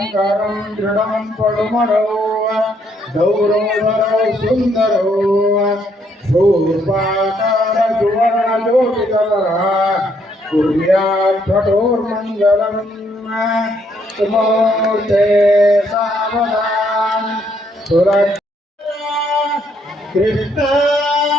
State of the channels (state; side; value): normal; both; correlation 0.71